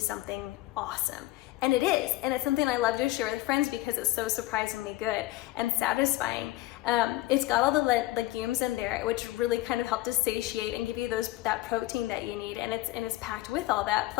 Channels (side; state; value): right; quieter; 17.8 dB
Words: awesome. And it is, and it's something I love to share with friends because it's so surprisingly good and satisfying. It's got all the legumes in there, which really kind of help to satiate and give you that protein that you need, and it's packed with all that,